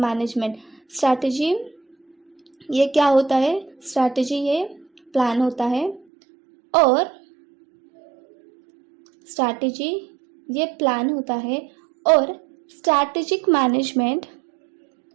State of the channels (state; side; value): drops out; left; at 6.1 s